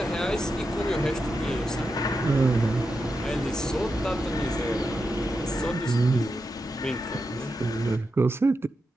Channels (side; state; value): both; normal; correlation 0.87